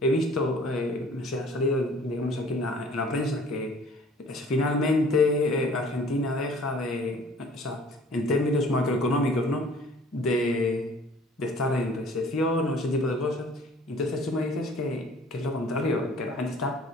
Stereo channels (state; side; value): normal; both; correlation 0.51